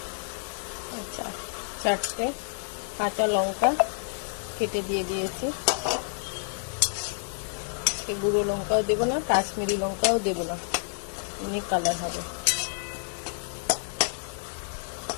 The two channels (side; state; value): right; silent; 59 dB below the other